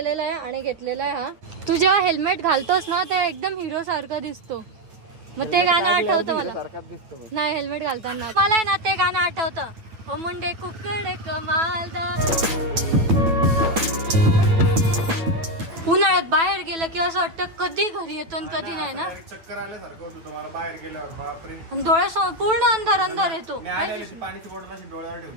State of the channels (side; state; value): left; late; 9.1 ms